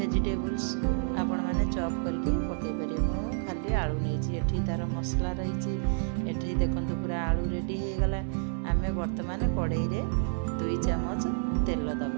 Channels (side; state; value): left; silent; digital silence